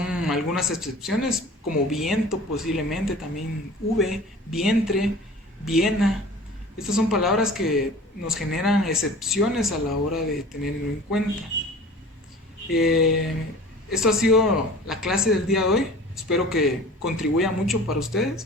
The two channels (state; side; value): normal; both; correlation 0.42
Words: algunas excepciones, como viento posiblemente, también V, vientre, Viena. Estas son palabras que nos generan excepciones a la hora de tenerlo en cuenta. Esto ha sido la clase del día de hoy. Espero que contribuya mucho para